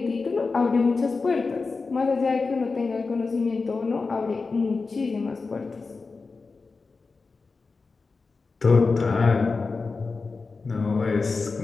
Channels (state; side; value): quieter; right; 4.2 dB